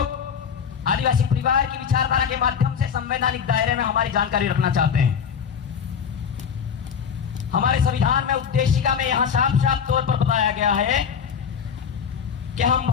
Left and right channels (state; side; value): quieter; right; 7.1 dB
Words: आदिवासी परिवार की विचारधारा के माध्यम से संवैधानिक दायरे में हमारी जानकारी रखना चाहते हैं। हमारे संविधान में उद्देशिका में यहां साफ साफ तौर पर बताया गया है कि हम